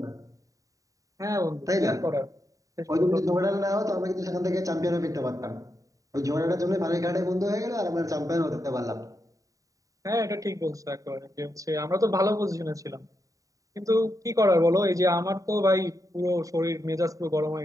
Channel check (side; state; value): left; late; 0.16 ms